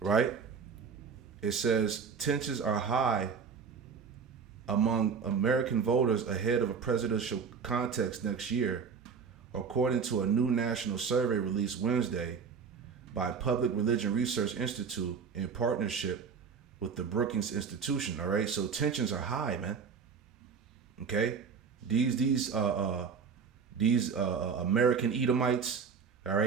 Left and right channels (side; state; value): left; quieter; 6.0 dB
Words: It says tensions are high among American voters ahead of a presidential contest next year, according to a new national survey released Wednesday by Public Religion Research Institute in partnership with the Brookings Institution. All right, so tensions are high, man. Okay, these American Edomites, all